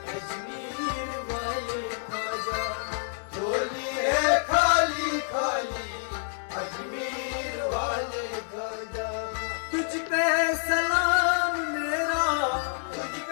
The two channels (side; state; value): right; silent; digital silence